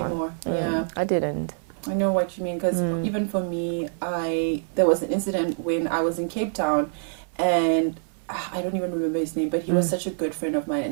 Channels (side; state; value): left; silent; 57 dB below the other